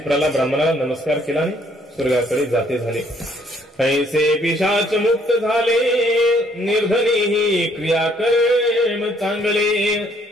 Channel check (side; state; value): both; normal; correlation 0.65